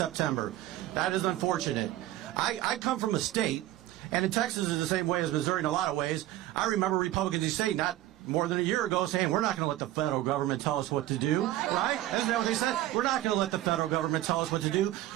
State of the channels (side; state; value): left; quieter; 14.9 dB